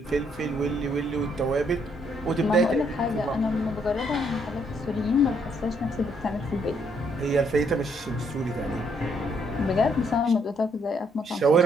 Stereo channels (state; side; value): normal; both; correlation 0.70